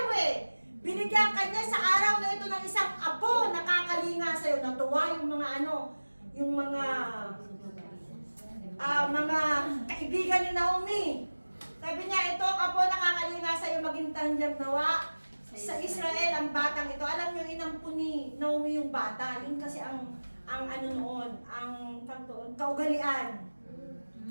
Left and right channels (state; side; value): inverted; both; correlation -1.00